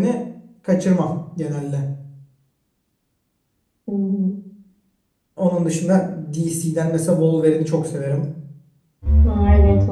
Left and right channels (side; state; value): both; identical; correlation 1.00